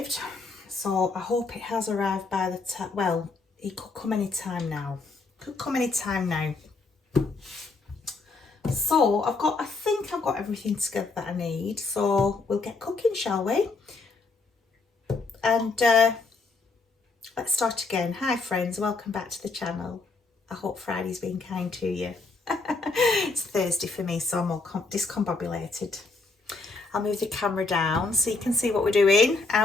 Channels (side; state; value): right; quieter; 3.8 dB